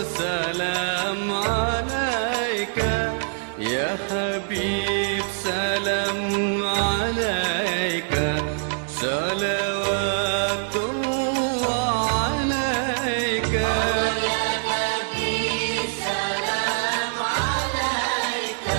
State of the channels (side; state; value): left; silent; digital silence